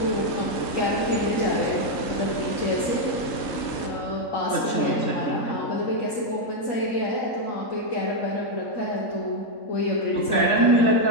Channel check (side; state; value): right; late; 3.5 ms